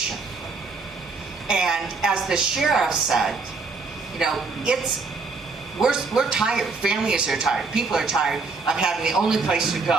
And as the sheriff said, you know, we're tired. Families are tired. People are tired of having the only place to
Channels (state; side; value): quieter; left; 4.2 dB